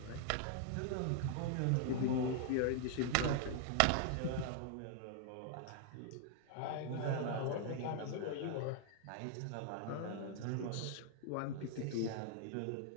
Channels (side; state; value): both; different; correlation 0.00